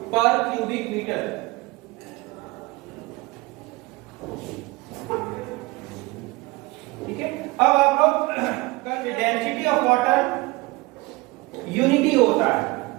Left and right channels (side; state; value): left; quieter; 22.8 dB